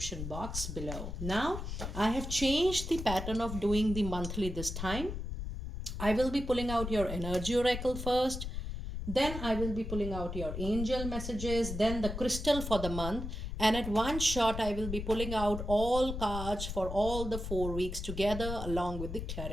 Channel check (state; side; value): noise; left; rumble, 6 dB below the sound